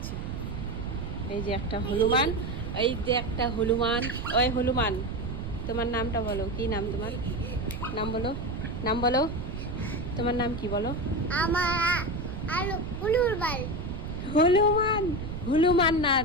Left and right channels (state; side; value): noise; right; rumble, 6 dB below the sound